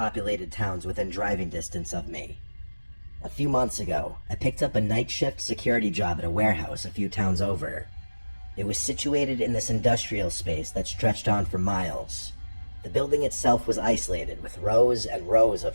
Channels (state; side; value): inverted; both; correlation -1.00